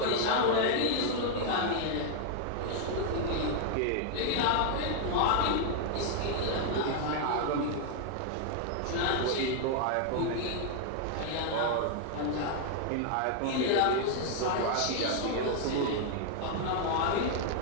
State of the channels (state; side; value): different; both; correlation 0.00